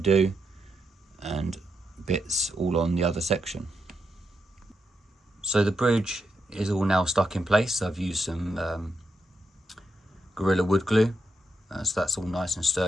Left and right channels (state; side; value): normal; both; correlation 0.83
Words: and bits all on the other section. So the bridge is all now stuck in place. I've used some Gorilla wood glue, so that's all nice and